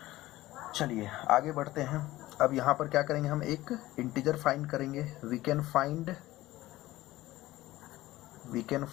चलिए आगे बढ़ते हैं। अब यहाँ पर क्या करेंगे, हम एक इंटीजर फाइंड करेंगे। We can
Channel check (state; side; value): quieter; right; 16.9 dB